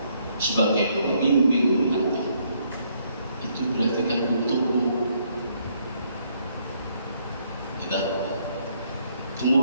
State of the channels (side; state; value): both; inverted; correlation -0.70